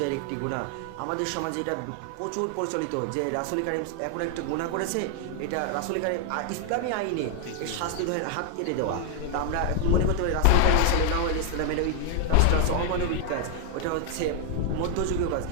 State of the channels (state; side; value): different; both; correlation 0.00